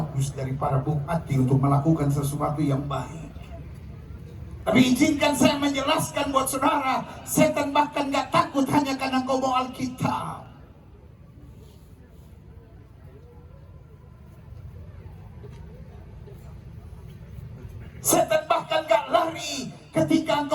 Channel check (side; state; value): both; identical; correlation 1.00